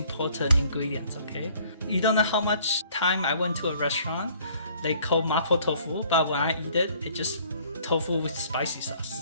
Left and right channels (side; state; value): both; inverted; correlation -0.58